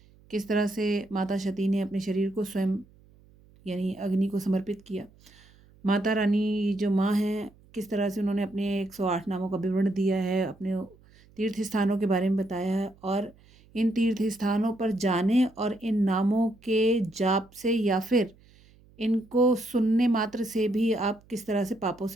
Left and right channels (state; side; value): noise; right; hum, 28 dB below the sound